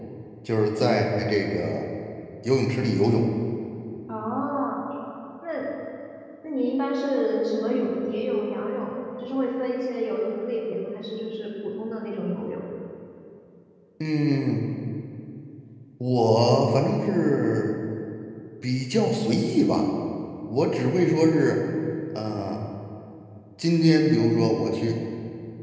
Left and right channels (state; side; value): identical; both; correlation 1.00